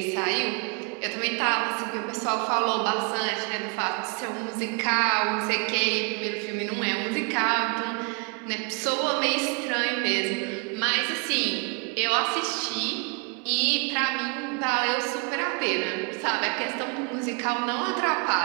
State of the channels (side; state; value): left; quieter; 34.9 dB